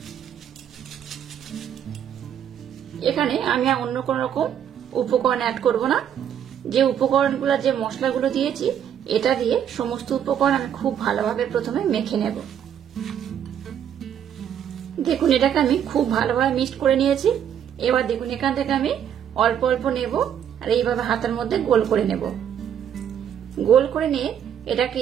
এখানে আমি অন্য কোন রকম উপকরণ অ্যাড করব না। যে উপকরণগুলো যে মশলাগুলো দিয়েছি এটা দিয়ে সমস্ত উপকরণ আমি খুব ভালোভাবে প্রথমে মেখে নেব। দেখুন এটাকে আমি খুব ভালোভাবে মিক্সড করে নিয়েছি। এবার দেখুন এখান থেকে আমি অল্প অল্প নেব আর এইভাবে হাতের মধ্যে গোল করে নেব। গোল করে নিয়ে এটাকে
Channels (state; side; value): quieter; left; 9.2 dB